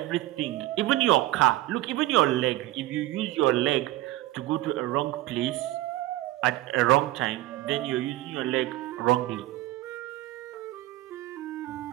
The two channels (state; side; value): quieter; left; 16.7 dB